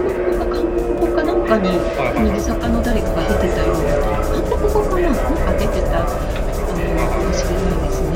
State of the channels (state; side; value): identical; both; correlation 1.00